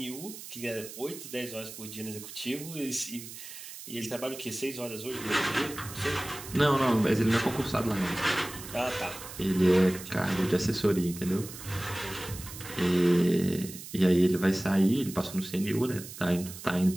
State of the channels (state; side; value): noise; right; hiss, 13 dB below the sound